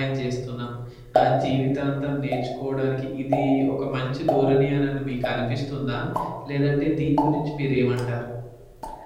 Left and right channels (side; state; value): both; identical; correlation 1.00